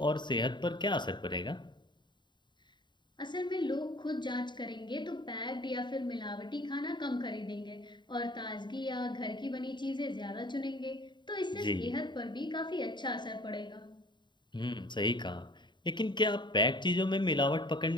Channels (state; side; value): late; right; 0.22 ms